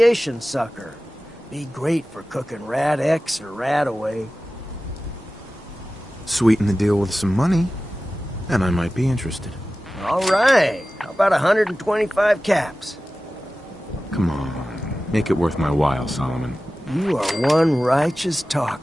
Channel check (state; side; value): normal; both; correlation 0.96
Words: sucker. Be great for cooking rat X or rat away. Sweeten the deal with some money, and I might be interested. All right. How about 125 caps? Come on. Make it worth my while, Solomon. You are one righteous